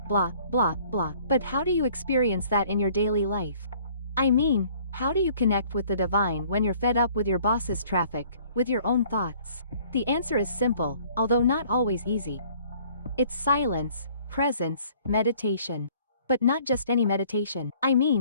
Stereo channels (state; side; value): inverted; both; correlation -0.56